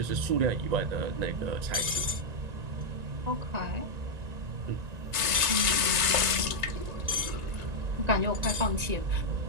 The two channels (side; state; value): left; late; 1.9 ms